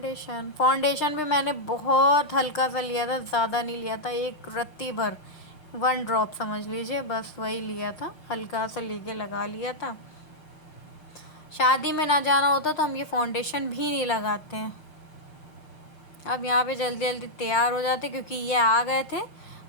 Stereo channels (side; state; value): right; late; 6.6 ms